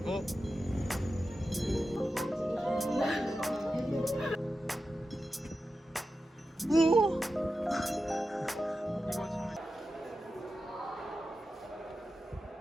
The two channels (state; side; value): normal; both; correlation 0.92